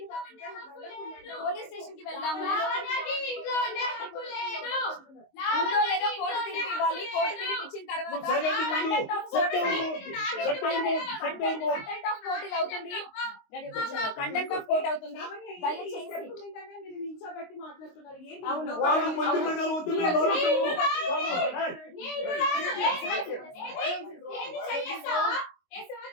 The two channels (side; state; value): right; late; 22 ms